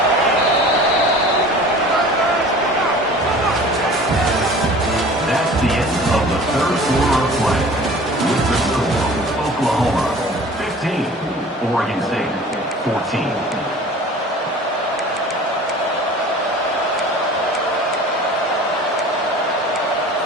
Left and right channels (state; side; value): normal; both; correlation 0.44